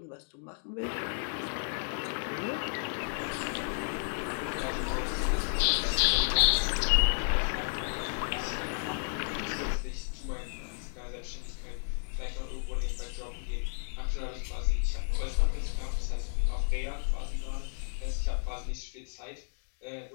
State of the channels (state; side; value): silent; right; digital silence